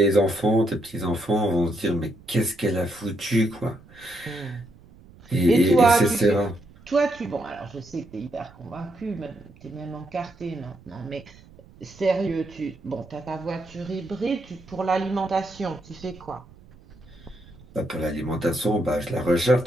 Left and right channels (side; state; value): right; noise; rumble, 24 dB below the sound